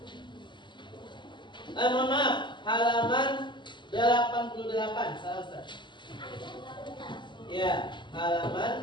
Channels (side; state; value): right; late; 0.22 ms